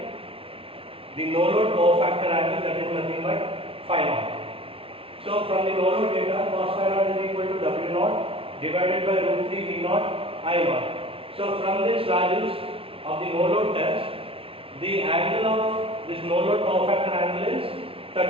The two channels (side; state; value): left; late; 0.26 ms